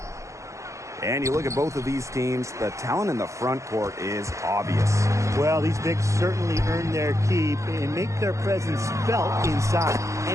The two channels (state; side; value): late; left; 0.15 ms